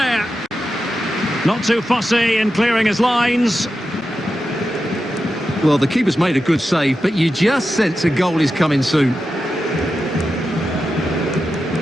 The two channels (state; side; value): normal; both; correlation 0.90